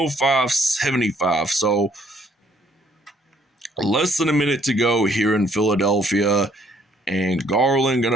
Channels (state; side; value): normal; both; correlation 0.65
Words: So less than a minute to go here in Philadelphia. And Garland